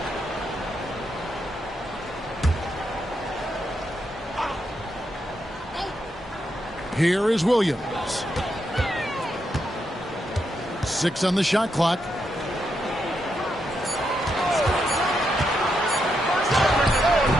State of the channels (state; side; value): normal; both; correlation 0.81